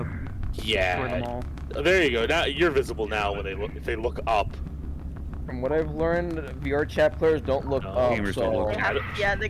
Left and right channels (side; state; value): both; identical; correlation 1.00